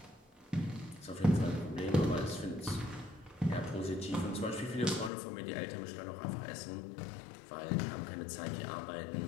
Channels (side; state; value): right; drops out; at 5.1 s